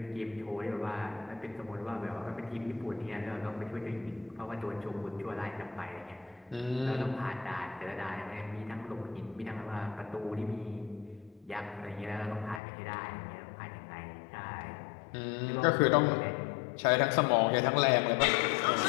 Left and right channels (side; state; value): right; drops out; at 12.6 s